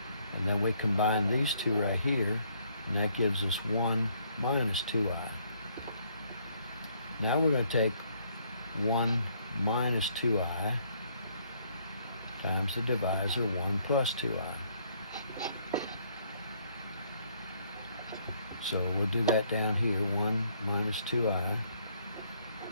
And then we combine these two right here, and that gives us 1 minus 2i. Now we're going to take 1 minus 2i times the divisor 1 plus 2i. So we'll do that down here, 1 minus 2i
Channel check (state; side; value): inverted; both; correlation -0.67